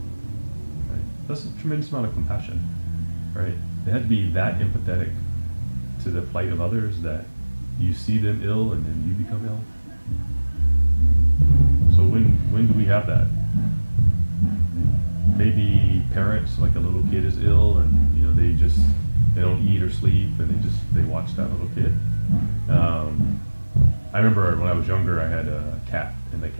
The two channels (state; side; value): inverted; both; correlation -1.00